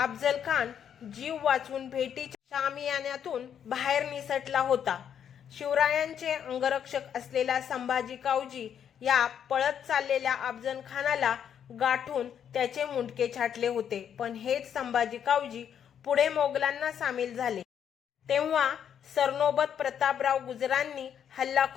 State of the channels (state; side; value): quieter; right; 8.7 dB